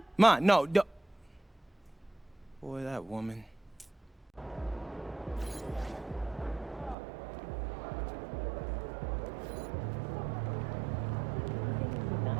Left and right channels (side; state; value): left; drops out; at 7.0 s